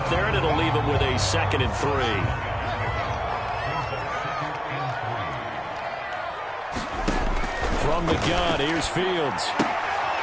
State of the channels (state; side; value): identical; both; correlation 1.00